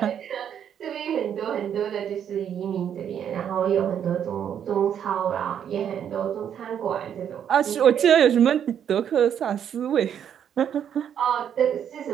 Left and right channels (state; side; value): quieter; left; 8.9 dB